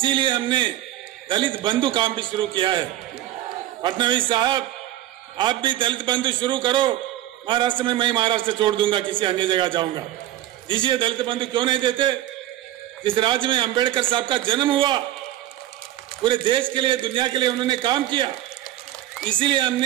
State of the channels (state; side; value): quieter; left; 13.8 dB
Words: हमने दलित बंधु काम भी शुरू किया है। फडणवीस साहब, आप भी दलित बंधु शुरू करो, महाराष्ट्र में मैं महाराष्ट्र छोड़ दूंगा, किसी अन्य जगह जाऊंगा। दीजिए, दलित बंधु क्यों नहीं देते? जिस राज्य में अंबेडकर साहब का जन्म हुआ, पूरे देश के लिए, दुनिया के लिए उन्होंने काम किया, इसीलिए